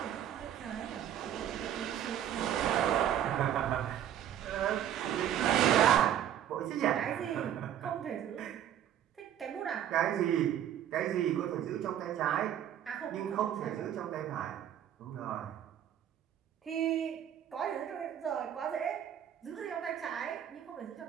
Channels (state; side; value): quieter; left; 10.4 dB